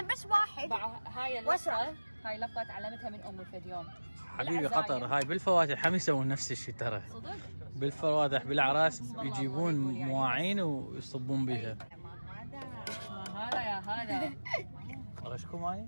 بس واحد هاي اللفظه هاي لفظه تعلمتها من امي في اليوم. حبيبي قطر هاي بالفواتح هم يسوون نفس الشيء ترى. صدق؟ بالفواتح بالاعراس يجيبون مواعين ويصبون بها. هذا يا هذا غشكم معي؟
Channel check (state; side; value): inverted; both; correlation -1.00